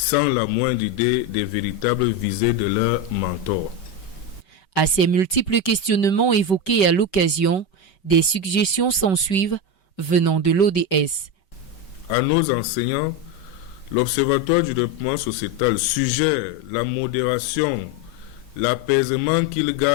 la moindre idée des véritables visées de leurs mentors. À ces multiples questionnements évoqués à l'occasion, des suggestions s'ensuivent venant de l'ODS. À nos enseignants, l'Observatoire du développement sociétal suggère la modération, l'apaisement qu'ils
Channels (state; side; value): late; right; 5.2 ms